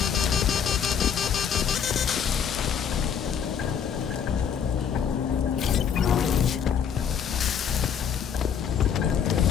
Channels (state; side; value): quieter; right; 7.7 dB